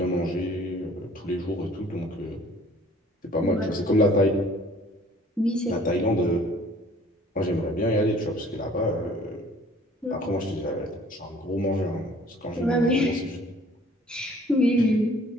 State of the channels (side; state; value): both; normal; correlation 0.54